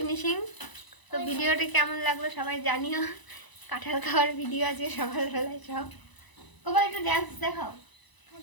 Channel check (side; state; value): right; late; 1.0 ms